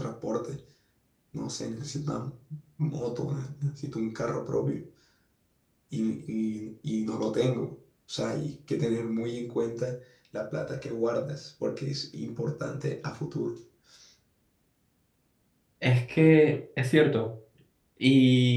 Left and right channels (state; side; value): identical; both; correlation 1.00